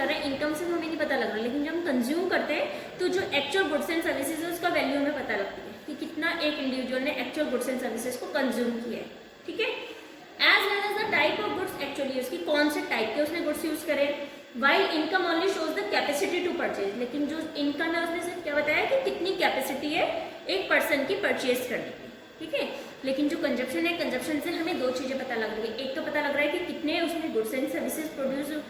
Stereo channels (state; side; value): identical; both; correlation 1.00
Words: रहे हैं, इनकम से हमें नहीं पता लग रहा, लेकिन जब हम कंज्यूम करते हैं तो जो एक्चुअल गुड्स एंड सर्विसेज है उसका वैल्यू हमें पता लगती है कि कितना एक इंडिविजुअल ने एक्चुअल गुड्स एंड सर्विसेज को कंज्यूम किया है। ठीक है, as well as the type of goods actually use, की कौन से टाइप के उसने गुड्स यूज करे। While income only shows the capacity to purchase, लेकिन जो इनकम है उसने सिर्फ क्या बताया कि कितनी कैपेसिटी है एक पर्सन की परचेज करने की। ठीक है, लेकिन जो कंजप्शन है, कंजप्शन से हमें दो चीजें पता लग रही है, एक तो पता लग रहा है कि कितने उसने गुड्स एंड सर्विसेज